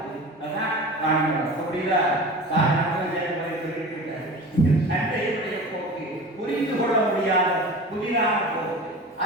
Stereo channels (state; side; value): normal; both; correlation 0.35